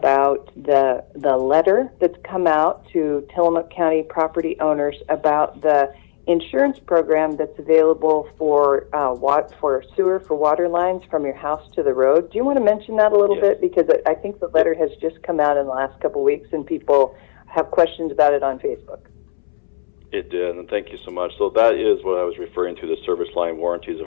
the letter that's come out to Tillamook County property owners about the insurance program that's available for sewer, for water lines from your house to the road. Do you want to mention that a little bit? Because I think the letter has just come out in the last couple of weeks, and people have questions about it on Facebook. It did, and thank you so much. So that is what I was referring to, the Service Line Warranties of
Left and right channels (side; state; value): right; silent; 67 dB below the other